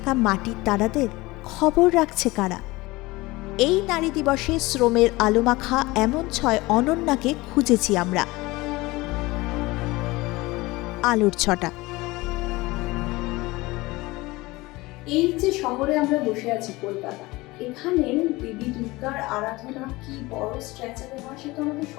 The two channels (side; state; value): right; quieter; 21.2 dB